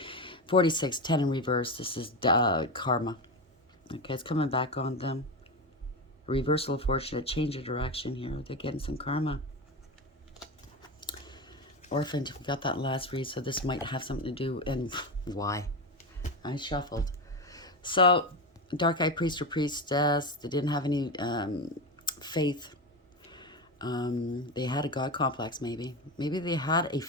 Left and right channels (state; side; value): normal; both; correlation 0.18